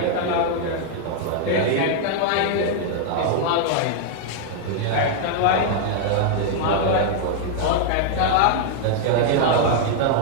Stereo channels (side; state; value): both; different; correlation 0.00